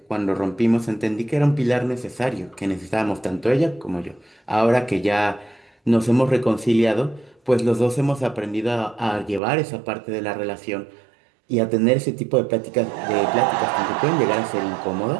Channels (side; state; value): left; drops out; at 9.4 s